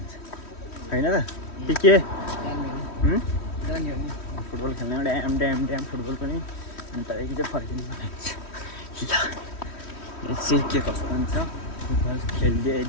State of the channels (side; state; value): right; late; 3.1 ms